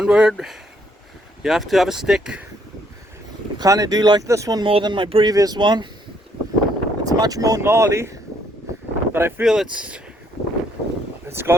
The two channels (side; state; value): both; normal; correlation 0.69